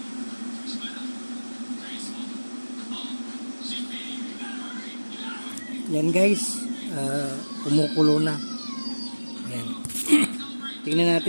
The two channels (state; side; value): inverted; both; correlation -1.00